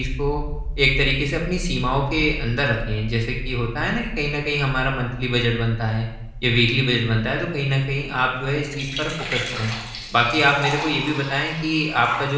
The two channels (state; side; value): identical; both; correlation 1.00